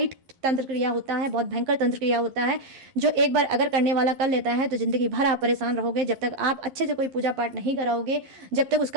तंत्र क्रिया होता है, बहुत भयंकर तंत्र क्रिया होता है, जो एक बार अगर करने वाला कर लेता है तो जिंदगी भर आप परेशान रहोगे। जब तक आप अच्छे से कोई पूजा पाठ नहीं कराओगे, जब तक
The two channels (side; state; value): left; late; 11 ms